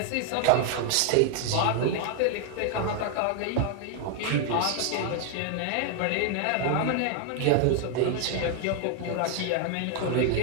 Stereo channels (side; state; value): both; different; correlation 0.00